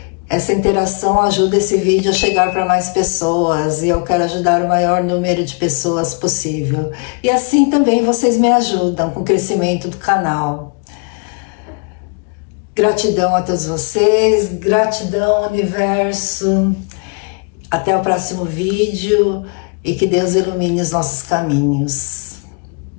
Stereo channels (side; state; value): right; quieter; 36.7 dB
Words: Essa interação ajuda esse vídeo a chegar para mais pessoas e eu quero ajudar o maior número de pessoas possível. E assim também vocês me ajudam com o crescimento do canal. Gratidão a todos vocês, gratidão universo. Até o próximo vídeo e que Deus ilumine os nossos caminhos.